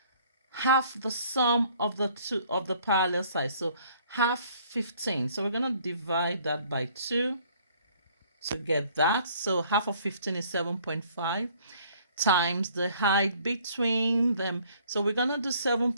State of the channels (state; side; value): inverted; both; correlation -0.59